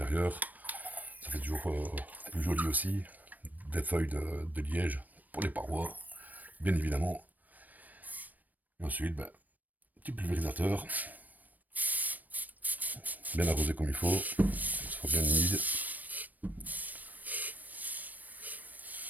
Ça fait toujours plus joli aussi. Des feuilles de liège pour les parois, bien évidemment. Et ensuite, ben, petit pulvérisateur. Bien arrosé comme il faut. Ça soit bien humide.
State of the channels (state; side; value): late; left; 0.083 ms